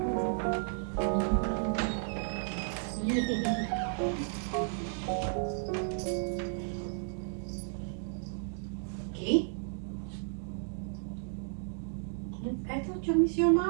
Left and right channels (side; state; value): left; silent; digital silence